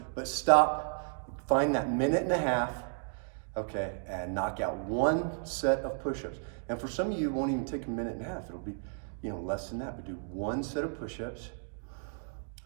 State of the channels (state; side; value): silent; left; 56 dB below the other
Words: but stop. Find that minute and a half, okay, and knock out one set of push-ups. And for some of you, it won't even take a minute and a half. It'll be, you know, less than that. But do one set of push-ups,